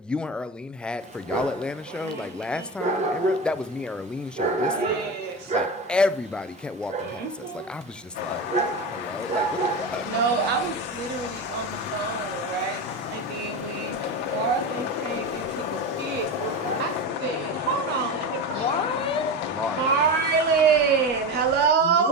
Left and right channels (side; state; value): both; normal; correlation 0.22